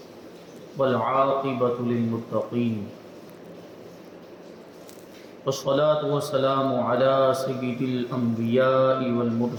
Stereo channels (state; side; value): identical; both; correlation 1.00